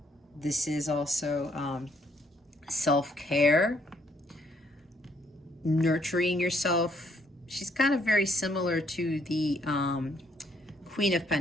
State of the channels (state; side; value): normal; both; correlation 0.69